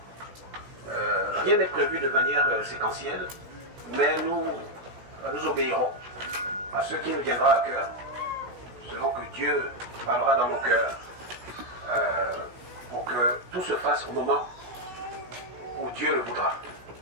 Rien n'est prévu de manière séquentielle, mais nous obéirons à ce qui nous viendra à cœur, selon que Dieu parlera dans nos cœurs, pour que tout se fasse au moment où Dieu le voudra.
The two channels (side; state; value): left; late; 17 ms